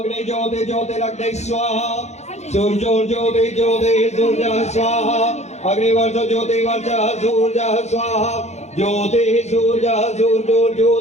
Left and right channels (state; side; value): late; right; 0.32 ms